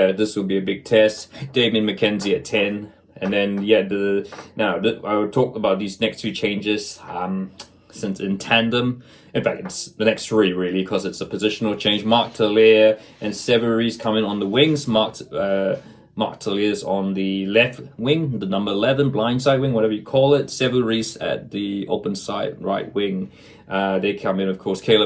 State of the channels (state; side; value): identical; both; correlation 1.00